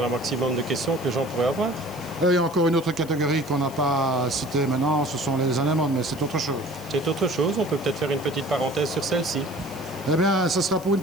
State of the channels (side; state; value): right; noise; hiss, 21 dB below the sound